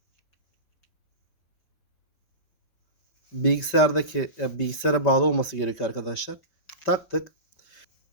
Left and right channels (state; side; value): late; right; 5.6 ms